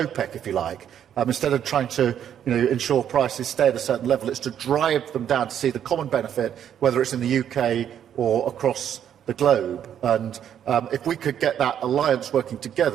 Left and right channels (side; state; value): left; quieter; 9.5 dB